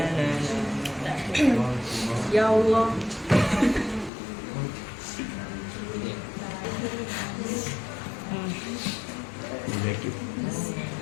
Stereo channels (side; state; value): right; drops out; at 4.1 s